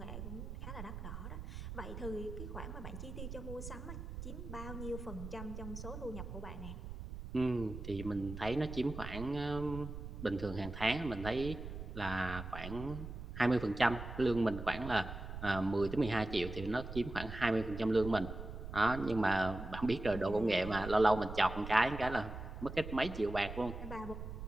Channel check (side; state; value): right; noise; rumble, 9 dB below the sound